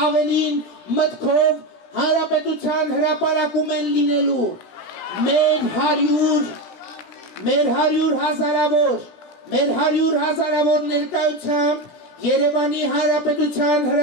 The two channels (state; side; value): late; right; 17 ms